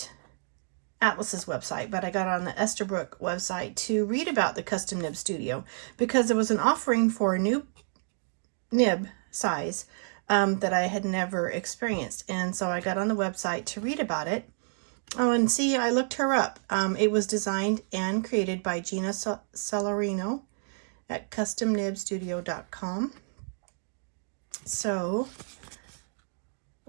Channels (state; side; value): silent; left; digital silence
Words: Atlas's website, but I got on the Esterbrook website to read about the Custom Nib Studio because there was an offering for a new nib size that I had never experienced. And so I got on the website to read about it. Oh, and see, I looked her up. It was designed and created by Gina Celerino at customnibstudio.com. So,